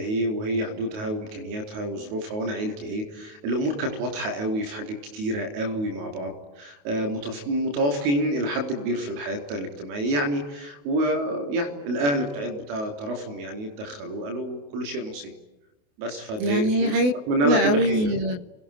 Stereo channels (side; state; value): left; late; 28 ms